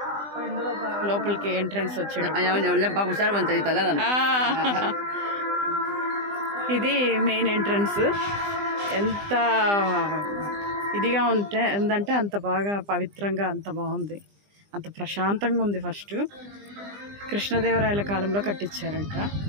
లోపలికి ఎంట్రన్స్ వచ్చాడు. ఇది మెయిన్ ఎంట్రన్స్. ఎంత ఇదిగా ఉందంటే అంత బాగా పవిత్రంగా, అంత బాగుంది, అంత ప్రశాంతంగా ఉంది. ఫస్ట్ కృష్ణదేవరాయల కాలంలో కట్టించారంట.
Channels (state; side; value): late; left; 20 ms